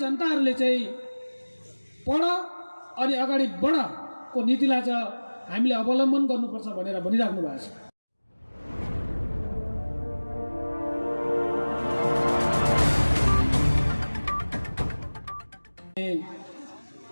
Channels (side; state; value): both; inverted; correlation -1.00